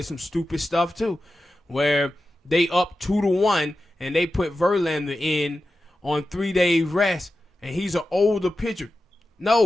some stupid stuff too, where they up 2-1 and they put Verlander in on 3-day rest, and he's an older pitcher.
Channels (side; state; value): both; normal; correlation 0.92